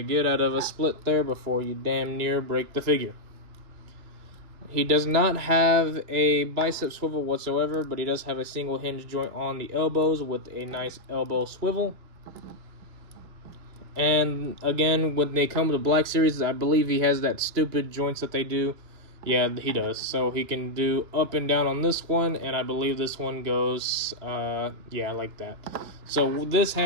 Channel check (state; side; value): late; left; 2.9 ms